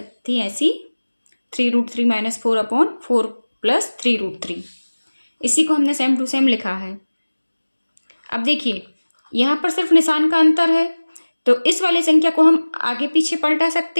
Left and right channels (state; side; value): inverted; both; correlation -1.00